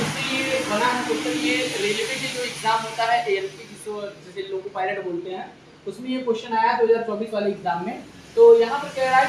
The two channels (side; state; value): both; identical; correlation 1.00